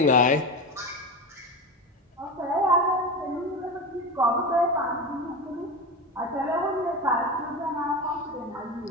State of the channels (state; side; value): normal; both; correlation 0.23